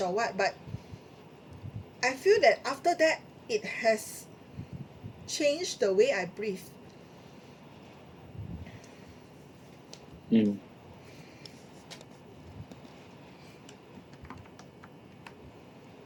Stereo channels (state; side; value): identical; both; correlation 1.00